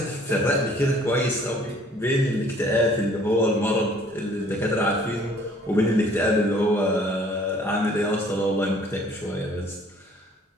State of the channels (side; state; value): both; normal; correlation 0.57